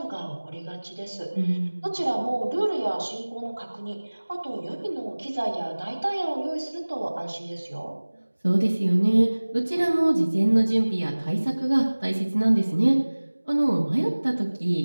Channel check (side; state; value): both; inverted; correlation -1.00